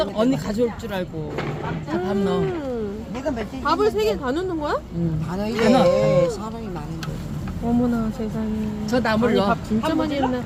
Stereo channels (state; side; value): identical; both; correlation 1.00